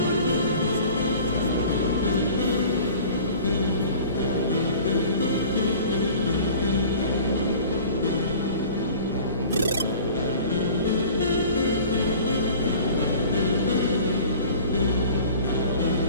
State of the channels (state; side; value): inverted; both; correlation -0.45